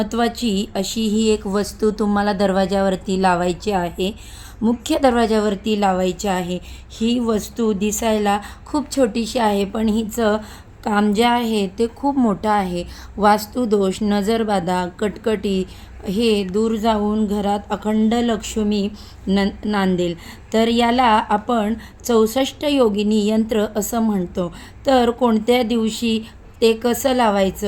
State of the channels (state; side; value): identical; both; correlation 1.00